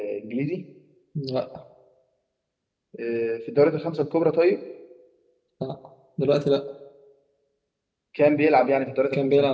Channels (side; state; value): both; identical; correlation 1.00